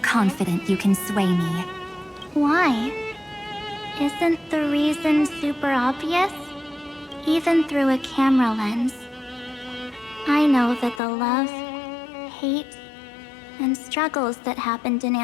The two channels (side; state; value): right; drops out; at 11.0 s